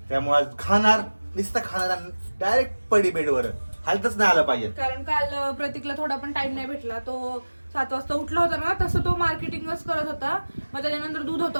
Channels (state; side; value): inverted; both; correlation -1.00